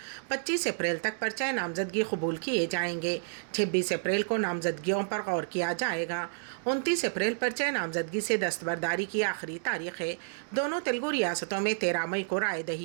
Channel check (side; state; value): left; silent; digital silence